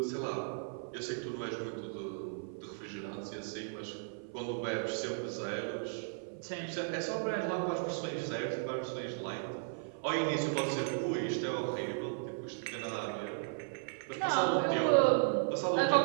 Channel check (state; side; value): silent; left; 54 dB below the other